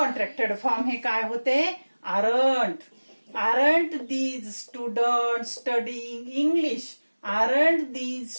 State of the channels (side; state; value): both; inverted; correlation -1.00